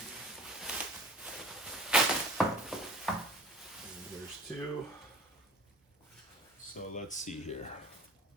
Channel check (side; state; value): both; normal; correlation 0.40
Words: And there's two. So let's see here.